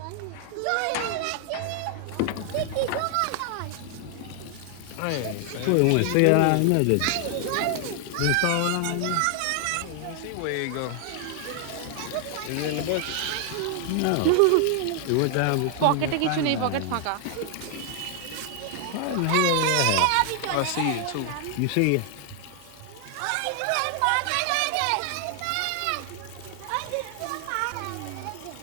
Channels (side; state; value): both; different; correlation 0.00